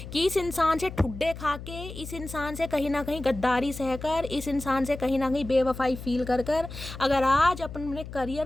कि इस इंसान से ठुड्डे खा के, इस इंसान से कहीं ना कहीं गद्दारी सहकर, इस इंसान से कहीं ना कहीं बेवफाई फील कर अगर आज अपने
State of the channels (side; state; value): left; noise; hum, 11 dB below the sound